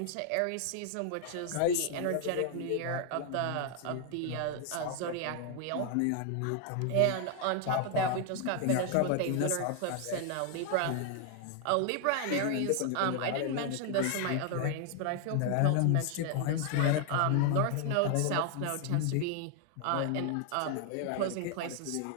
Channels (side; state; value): both; different; correlation 0.00